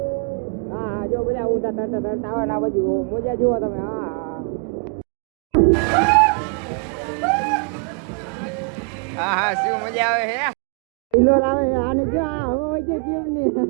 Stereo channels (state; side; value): quieter; left; 37.5 dB